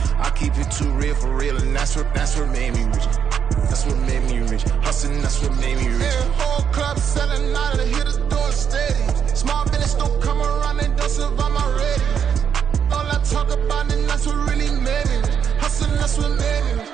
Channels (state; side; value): quieter; left; 7.6 dB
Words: I keep it too real for real, and that's what made me rich. That's what made me rich. Hustling, that's what made me rich. Yeah, whole club selling out of hitters doing stadiums. Small business don't come around, they don't survive my radius. All I talk about, and that's what really made me rich. Hustling, that's what made me rich.